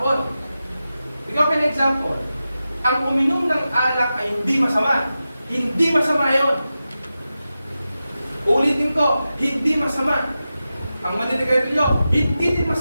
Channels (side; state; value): both; inverted; correlation -0.92